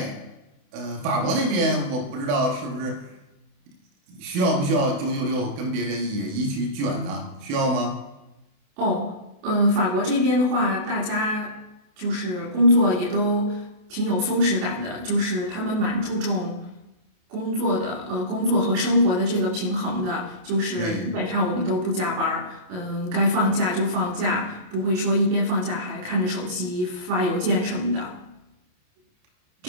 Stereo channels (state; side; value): late; left; 28 ms